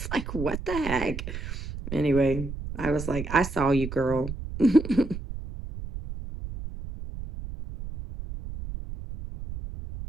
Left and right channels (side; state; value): right; noise; rumble, 8 dB below the sound